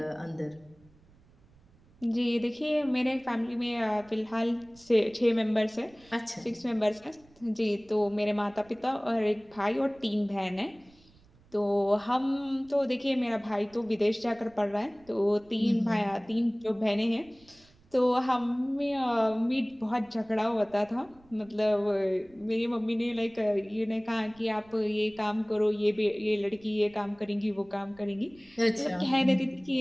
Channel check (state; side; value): noise; right; rumble, 29 dB below the sound